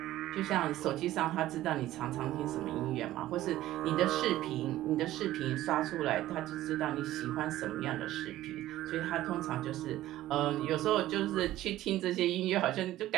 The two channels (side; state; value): left; quieter; 14.8 dB